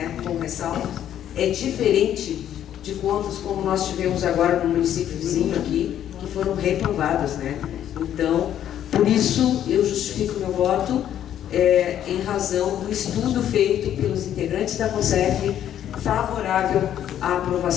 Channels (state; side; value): quieter; right; 10.7 dB